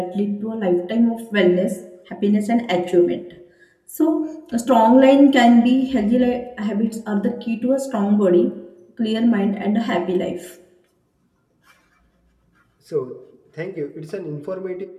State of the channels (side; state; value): both; identical; correlation 1.00